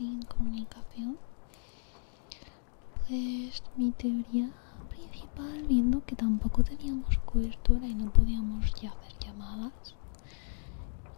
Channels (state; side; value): silent; right; digital silence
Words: incomunicación? Pues mi teoría principal, viendo que tampoco teníamos cobertura y no podíamos ya hacer llamadas,